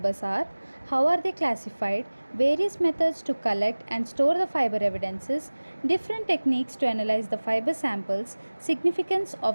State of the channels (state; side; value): inverted; both; correlation -1.00